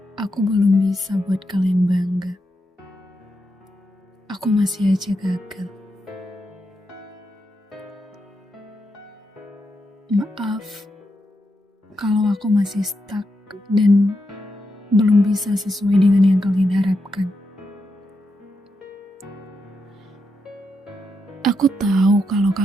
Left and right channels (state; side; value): normal; both; correlation 0.84